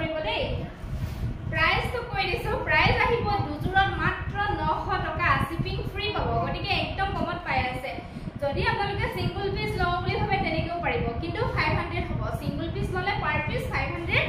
দেই প্ৰাইসটো কৈ দিছো প্ৰাইস আহিব দুজোৰত মাত্ৰ 900 টকা শিপিং ফ্ৰী পাব গতিকে একদম কমত পাই আছে যদি আপোনালোকে সিঙ্গল পিস লও বুলি ভাবে তেনেকেও পাৰিব কিন্তু 500 হ'ব সিঙ্গল পিস ললে পাৰ পিস 500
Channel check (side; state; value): both; identical; correlation 1.00